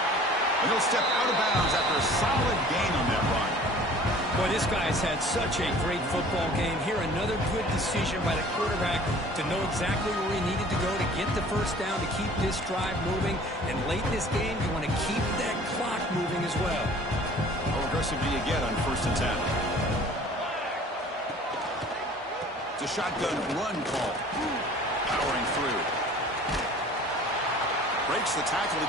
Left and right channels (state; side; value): normal; both; correlation 0.48